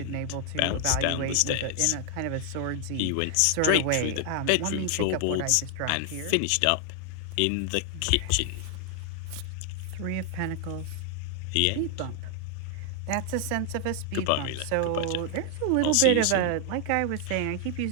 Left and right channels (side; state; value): both; different; correlation 0.00